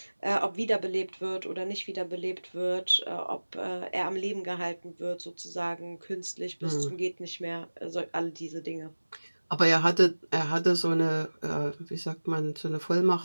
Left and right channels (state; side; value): inverted; both; correlation -1.00